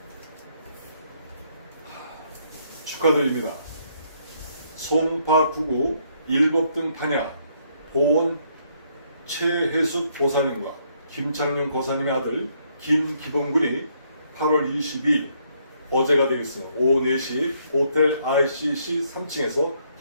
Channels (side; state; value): both; inverted; correlation -0.71